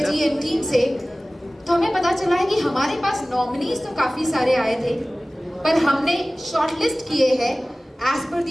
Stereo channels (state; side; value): normal; both; correlation 0.98